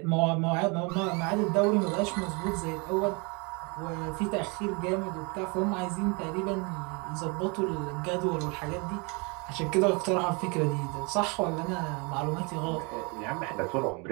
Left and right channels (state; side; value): quieter; left; 30.5 dB